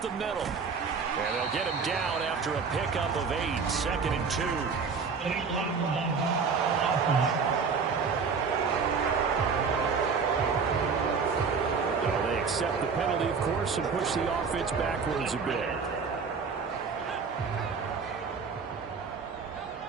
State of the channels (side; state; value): left; quieter; 5.4 dB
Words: the middle. And they'll get him down after a pickup of 8. 2nd and 2. Well, they accept the penalty, of course, and push the offense backwards a bit.